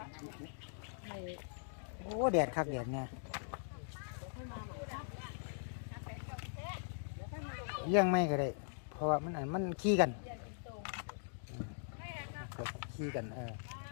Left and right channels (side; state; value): right; silent; digital silence